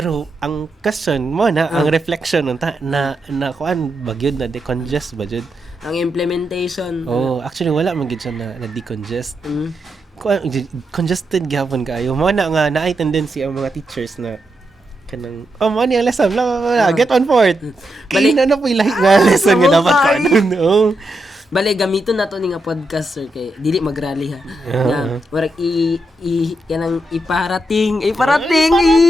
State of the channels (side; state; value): both; normal; correlation 0.84